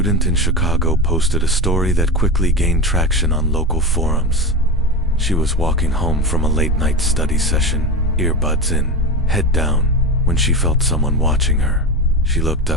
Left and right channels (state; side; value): normal; both; correlation 0.21